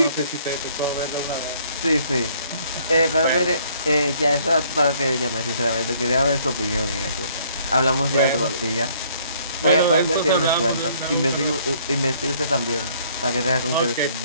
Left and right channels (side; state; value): both; inverted; correlation -0.62